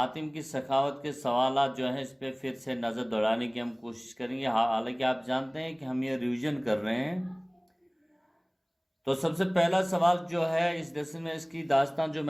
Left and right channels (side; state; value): both; identical; correlation 1.00